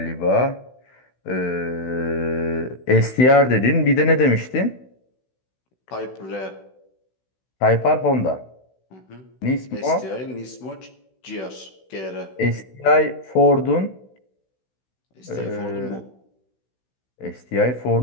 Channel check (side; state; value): right; late; 16 ms